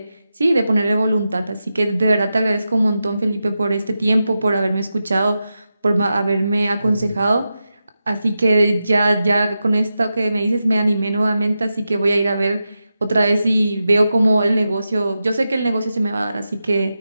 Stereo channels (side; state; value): both; inverted; correlation -0.90